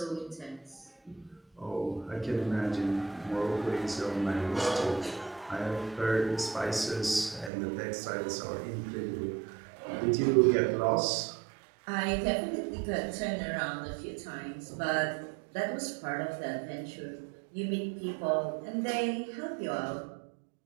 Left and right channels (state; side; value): drops out; left; at 7.5 s